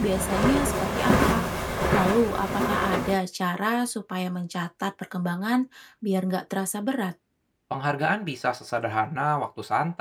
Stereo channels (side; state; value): both; identical; correlation 1.00